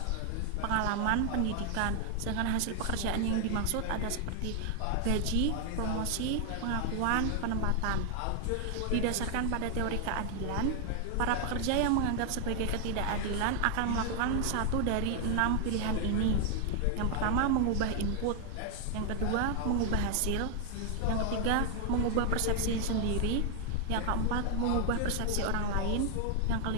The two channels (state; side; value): different; both; correlation 0.00